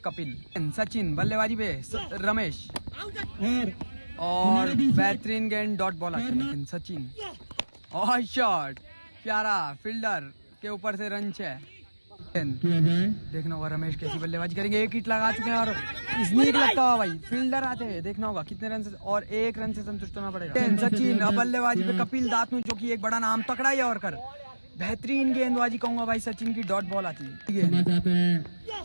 कपिल। सचिन बल्लेबाजी पे रमेश और बेहतरीन गेंद डॉट बॉल आती है। सचिन और शॉट प्यारा, फील्डर के ऊपर से रन है। देखना होगा रमेश कैसी बल्लेबाजी करेंगे। एक हिट लगा चुके हैं और स्नीक लगता हुआ भाई फील्डर आते हैं। देखना होगा कितने रन से, और एक रन से संतुष्ट होना पड़ेगा। सचिन अब बल्लेबाजी पे कपिल दातनू, जो कि एक बड़ा नाम तकड़ा ही और कर बेहतरीन गेंदबाजी कहूंगा भाई। सचिन की डॉट बॉल आती है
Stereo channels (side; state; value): both; inverted; correlation -1.00